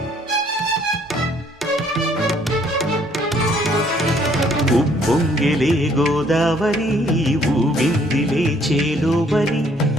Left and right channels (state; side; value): normal; both; correlation 0.63